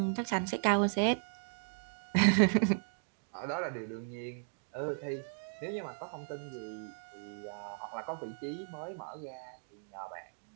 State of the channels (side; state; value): left; silent; digital silence